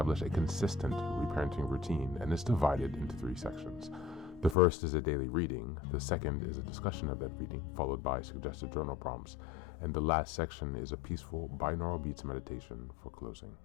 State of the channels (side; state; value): right; drops out; at 4.5 s